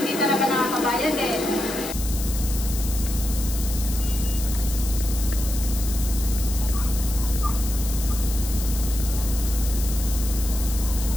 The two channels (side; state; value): left; noise; hiss, 8 dB below the sound